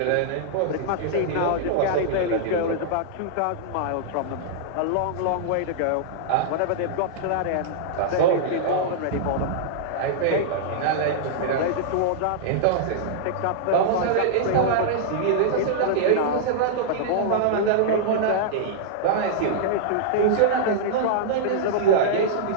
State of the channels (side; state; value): both; different; correlation -0.02